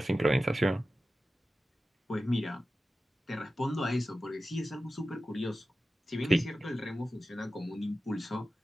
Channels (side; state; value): both; normal; correlation 0.94